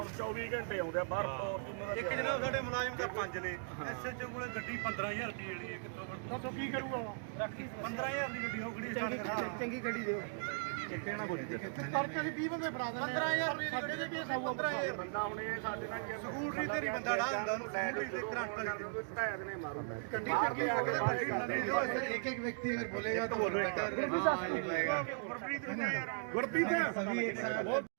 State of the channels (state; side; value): silent; left; digital silence